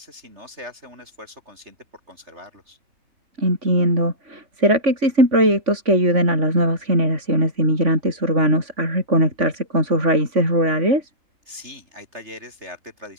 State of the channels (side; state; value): left; late; 3.3 ms